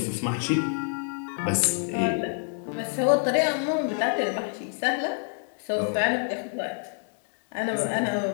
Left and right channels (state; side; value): silent; right; 56 dB below the other